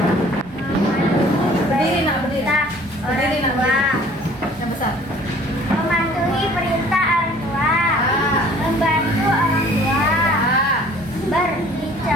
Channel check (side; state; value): both; normal; correlation 0.52